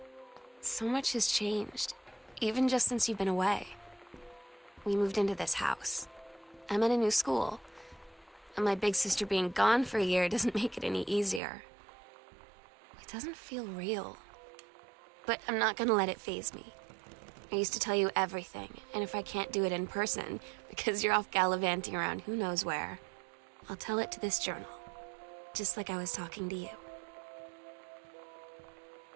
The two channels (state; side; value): drops out; left; at 11.4 s